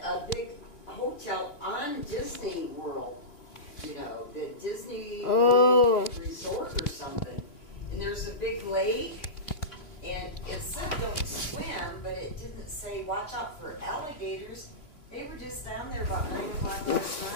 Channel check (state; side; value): late; right; 3.3 ms